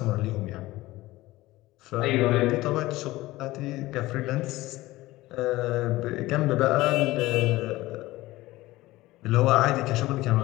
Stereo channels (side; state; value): right; quieter; 18.2 dB